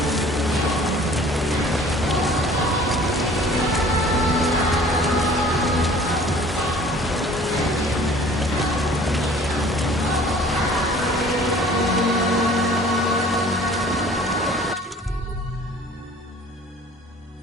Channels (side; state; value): both; normal; correlation 0.50